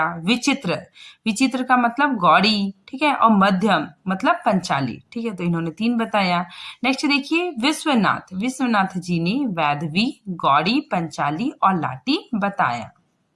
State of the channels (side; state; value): both; identical; correlation 1.00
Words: विचित्र, विचित्र का मतलब गौड़ी। ठीक है, और मध्यम मतलब पंचाली। ठीक है, तो इन्होंने 3 बताया। नेक्स्ट देखिए विश्वनाथ, विश्वनाथ जी ने वैदवी, गौड़ी, पंचाली और लाटी बताया।